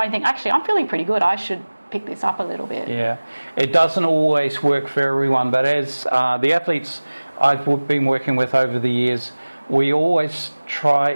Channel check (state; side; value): inverted; both; correlation -1.00